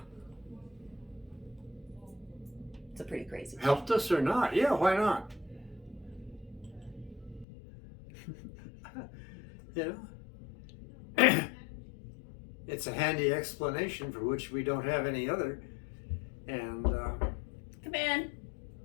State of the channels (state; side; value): drops out; right; at 7.5 s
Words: It's a pretty crazy thing. Helped us or not? Yeah, why not? It's a handy explanation for which we don't have any other. And come in.